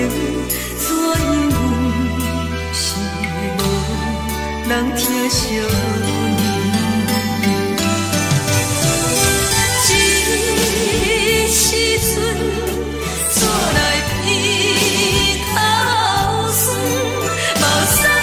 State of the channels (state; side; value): identical; both; correlation 1.00